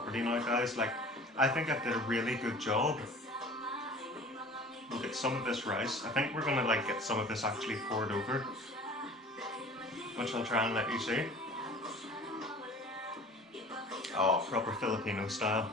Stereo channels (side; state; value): both; normal; correlation 0.44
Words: now guys. Like, I think I did a really good job. We'll get some of this rice. I think we're gonna like get some of this actually poured over, which I'll try and let you see. Oh, proper Filipino style.